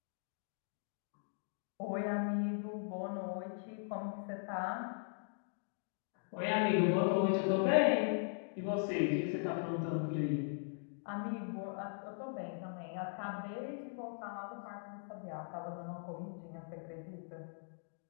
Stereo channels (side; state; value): right; silent; digital silence